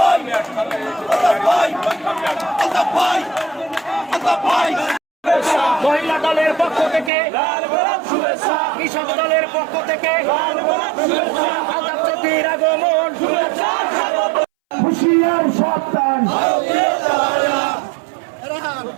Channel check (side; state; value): left; drops out; at 7.1 s